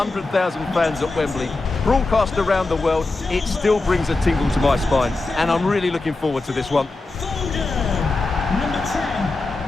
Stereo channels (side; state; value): right; quieter; 3.3 dB